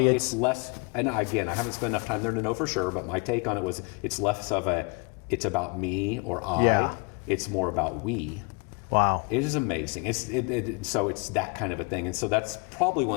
less, and again, I haven't spent enough time there to know for sure, but my take on it was it's less of it's about me or I, it's more about we. Wow. It is amazing. So it's that kind of a thing. And so that's probably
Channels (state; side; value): quieter; right; 31.3 dB